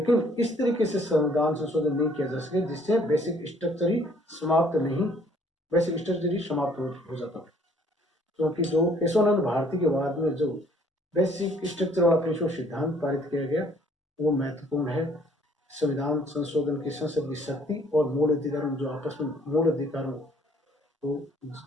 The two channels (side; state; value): both; normal; correlation 0.60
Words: इस तरीके से संविधान संशोधन नहीं किया जा सके जिससे बेसिक स्ट्रक्चर ही समाप्त हो जाता है। क्योंकि जो केशवानंद भारती के बाद में जो बेसिक स्ट्रक्चर वाला प्रिंसिपल सिद्धांत पारित किया गया वो महत्वपूर्ण है। संविधान संशोधन की संसद की शक्ति और मूल अधिकारों जो आपस में मूल अधिकारों को